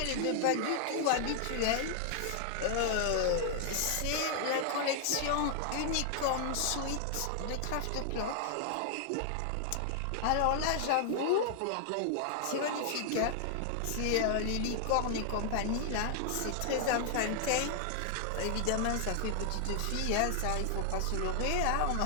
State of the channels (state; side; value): different; both; correlation 0.00